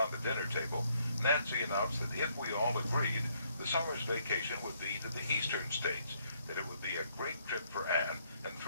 the dinner table, Nancy announced that if we all agreed, the summer's vacation would be to the eastern states, that it would be a great trip for Anne and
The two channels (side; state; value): both; inverted; correlation -0.70